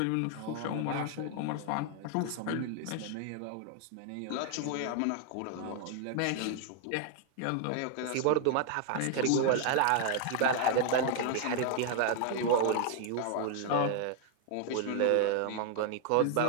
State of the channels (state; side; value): different; both; correlation 0.00